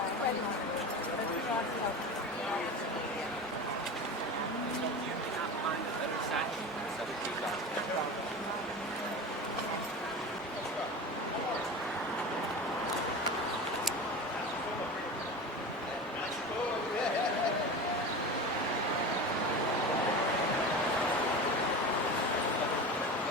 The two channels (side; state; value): both; normal; correlation 0.29